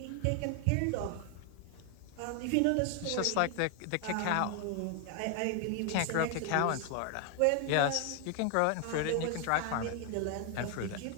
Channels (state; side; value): different; both; correlation 0.00